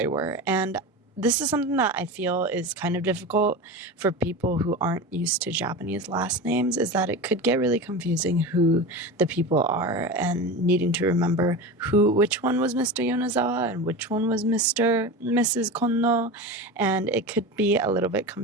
were. And this is something that I feel is kind of difficult for people who aren't used to Japanese last names, is that it could get really confusing who the people are, and needing to remember which one was Mr. Yonezawa and which one was Mrs. Konno, and it could be a little bit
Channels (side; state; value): both; normal; correlation 0.26